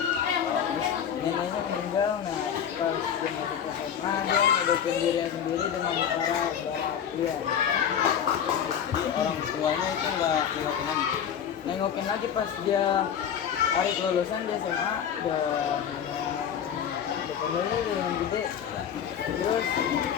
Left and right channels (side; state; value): right; quieter; 8.5 dB